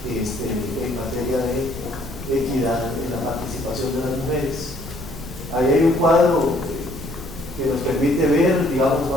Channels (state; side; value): noise; left; rumble, 14 dB below the sound